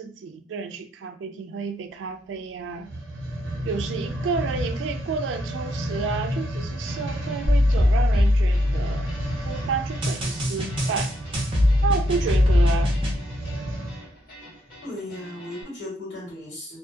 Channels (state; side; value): normal; both; correlation 0.77